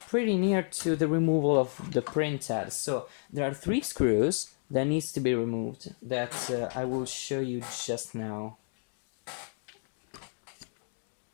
pretty near to the removal of the printhead. So there are 3 screws that needs to be removed that I will show you just now.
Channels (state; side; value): silent; right; 57 dB below the other